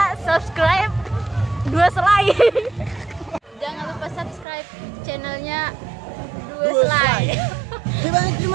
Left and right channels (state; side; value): drops out; left; at 4.5 s